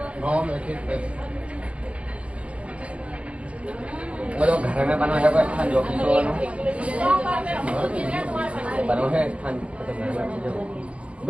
बोलो घर में बनो है कोई स्थान जो बनो है स्थान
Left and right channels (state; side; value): late; left; 0.062 ms